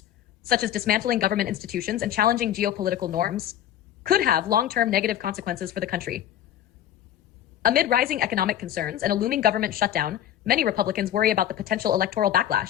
such as dismantling government institutions and challenging geopolitical norms, could have long-term negative consequences for the country. Amid rising economic concerns and a looming government shutdown, many Republicans worry about the potential electoral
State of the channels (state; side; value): quieter; right; 11.2 dB